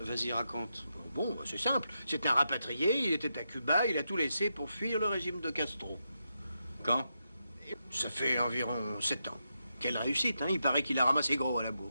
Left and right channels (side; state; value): both; inverted; correlation -0.85